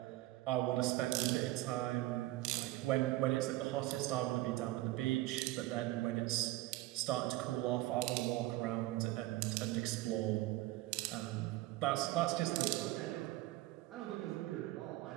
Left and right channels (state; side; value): quieter; left; 17.5 dB